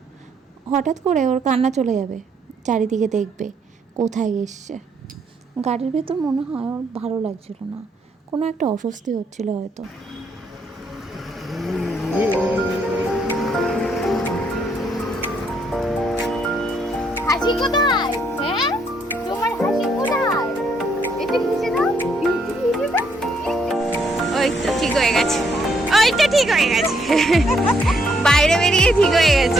হঠাৎ করে ওর কান্না চলে যাবে, চারিদিকে দেখবে কোথায় এসছে। গাড়ির ভেতর মনে হয় ওর ভালো লাগছিল না, কোনো একটা অস্বস্তি হচ্ছিল হয়তো। হাসি কোথায়? হ্যাঁ, তোমার হাসি কোথায়? এটা কিসে দাও? ওই তো ঠিক হয়ে গেছে, ওই তো ঠিক হয়ে গেছে। বাইরে বেরিয়ে ঠিক হয়ে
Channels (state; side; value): normal; both; correlation 0.72